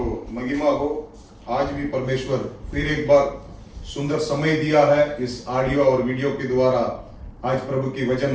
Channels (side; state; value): both; identical; correlation 1.00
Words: महिमा हो। आज भी परमेश्वर फिर एक बार सुंदर समय दिया है इस ऑडियो और वीडियो के द्वारा आज प्रभु की